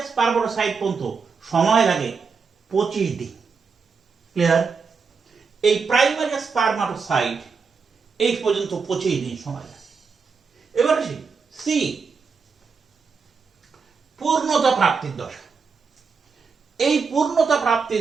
স্পারমাটোসাইট পর্যন্ত সময় লাগে 25 দিন। ক্লিয়ার? এই প্রাইমারি স্পারমাটোসাইট এই পর্যন্ত 25 দিন সময় লাগে। এবার আসি সি, পূর্ণতা প্রাপ্তির দশা। এই পূর্ণতা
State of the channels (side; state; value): left; quieter; 5.3 dB